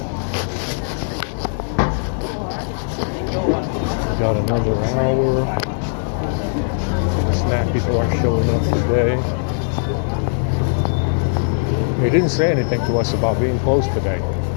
Got another hour. The snack people are showing up today. They didn't say anything to us about being closed today.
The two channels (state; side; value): silent; right; digital silence